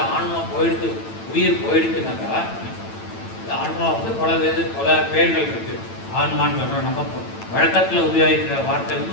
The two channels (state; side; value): late; right; 9.0 ms